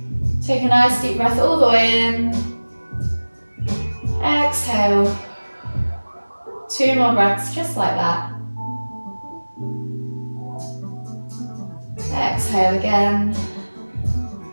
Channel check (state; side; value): inverted; both; correlation -1.00